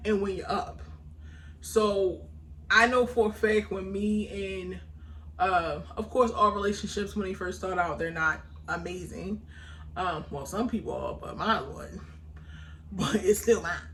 and when you're up. So I know for a fact when me and of course all relationships when they first start out, they're not amazing. Well, some people are, but mine wasn't. But it's still mine.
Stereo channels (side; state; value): both; identical; correlation 1.00